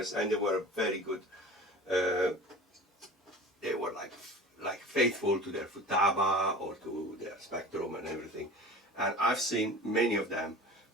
and they were very good. They were like faithful to their Futaba or to their Spectrum and everything. And I've seen many of them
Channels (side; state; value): both; normal; correlation 0.38